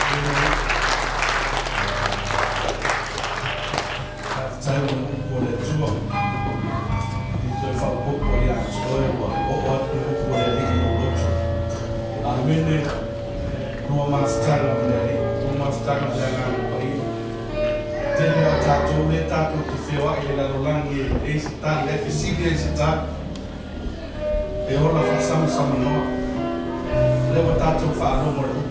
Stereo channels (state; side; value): identical; both; correlation 1.00